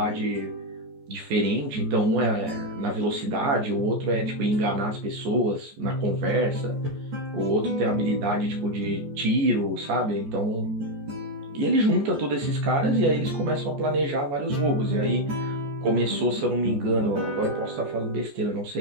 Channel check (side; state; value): left; late; 14 ms